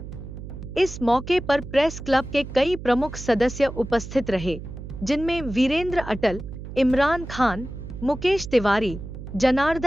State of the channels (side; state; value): right; noise; hum, 11 dB below the sound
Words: इस मौके पर प्रेस क्लब के कई प्रमुख सदस्य उपस्थित रहे, जिनमें वीरेंद्र अटल, इमरान खान, मुकेश तिवारी,